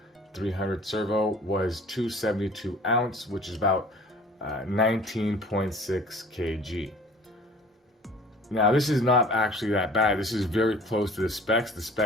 300 servo was 272 ounce, which is about 19.6 kg. Now this is not actually that bad. This is very close to the specs. The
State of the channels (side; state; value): both; normal; correlation 0.49